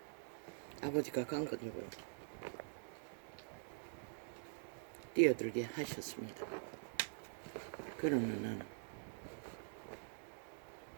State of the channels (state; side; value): silent; left; digital silence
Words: 아버지가 강건이고 뛰어들게 하셨습니다. 그러나 나는